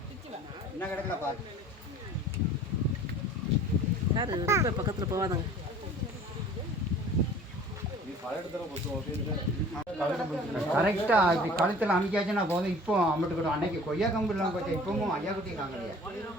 என்ன கிடக்கல பாரு யார் ரொம்ப பக்கத்தில் போவாதாங்க கரெக்டாக இப்படி கழுத்தில் அமைக்காச்சுன்னா போதும். இப்போ அம்மட்டு கூட அன்னைக்கு கொய்யா கம்பு இல்லாமல் போச்சு. இப்பவும் ஐயா குட்டியும் காங்கலையா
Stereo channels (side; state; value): both; normal; correlation 0.47